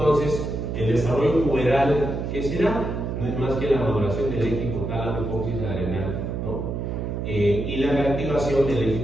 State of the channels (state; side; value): noise; right; hum, 3 dB below the sound